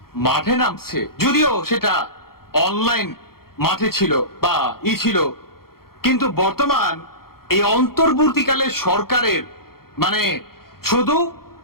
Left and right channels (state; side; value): late; right; 0.94 ms